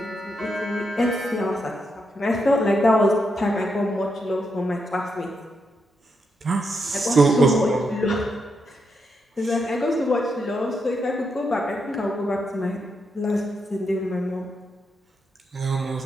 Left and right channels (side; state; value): both; normal; correlation 0.82